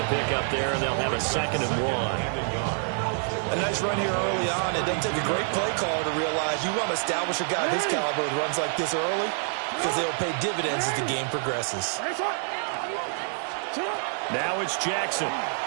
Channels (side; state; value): left; silent; 55 dB below the other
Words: pickup there, and they'll have a 2nd and 1. A nice run here early on. It doesn't take a great play caller to realize you want to establish a guy of his caliber who runs like this early because they'll pay dividends as the game progresses. Now it's Jackson.